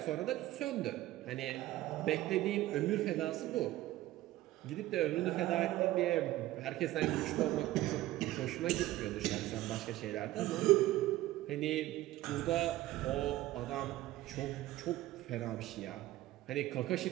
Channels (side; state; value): left; quieter; 16.0 dB